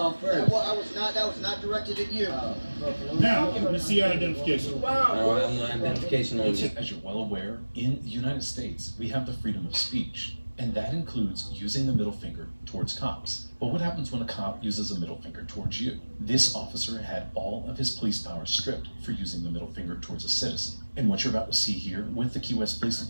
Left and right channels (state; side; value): inverted; both; correlation -1.00